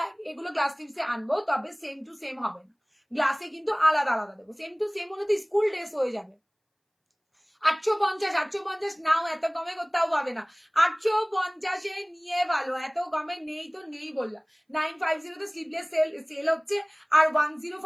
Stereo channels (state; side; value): identical; both; correlation 1.00